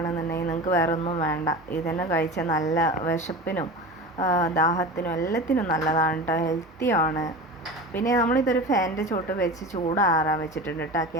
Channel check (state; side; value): normal; both; correlation 0.31